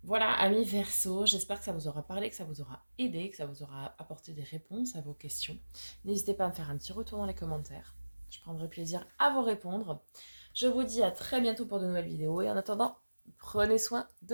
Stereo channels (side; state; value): both; inverted; correlation -1.00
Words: Voilà, amis Verseau, j'espère que ça vous aura parlé, que ça vous aura aidé, que ça vous aura apporté des réponses à vos questions. N'hésitez pas à me faire un petit retour dans les commentaires. Je prendrai plaisir à vous répondre. Je vous dis à très bientôt pour de nouvelles vidéos et en attendant, prenez soin